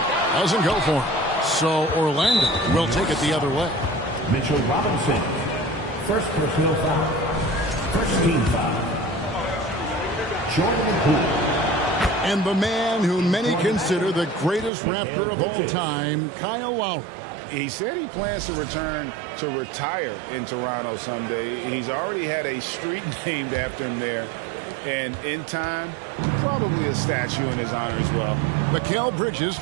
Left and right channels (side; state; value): left; drops out; at 14.7 s